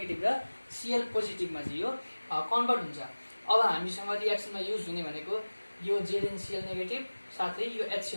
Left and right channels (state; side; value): inverted; both; correlation -1.00